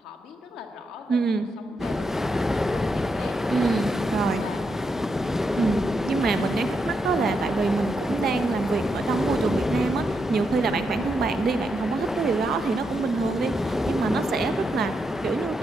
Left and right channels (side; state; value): both; normal; correlation 0.82